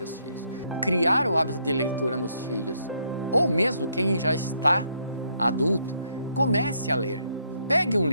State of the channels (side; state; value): both; inverted; correlation -0.72